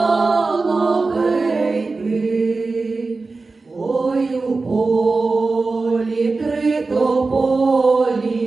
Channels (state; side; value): quieter; left; 3.8 dB